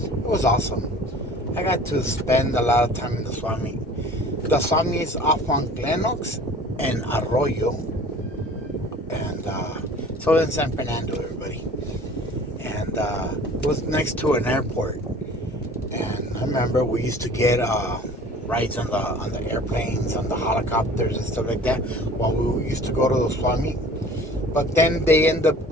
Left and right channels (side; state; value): both; normal; correlation 0.46